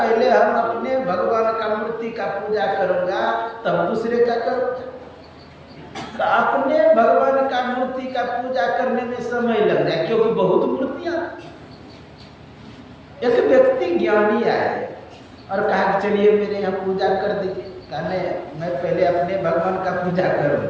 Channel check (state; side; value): identical; both; correlation 1.00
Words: हम अपने भगवान का मूर्ति का पूजा करूंगा तब दूसरे का करूंगा। तो अपने भगवान का मूर्ति का पूजा करने में समय लग जाए, क्योंकि बहुत मूर्तियां। एक व्यक्ति ज्ञानी आए और कहा कि चलिए मेरे यहाँ पूजा कर दीजिए। कहा नहीं, मैं पहले अपने भगवान का पूजा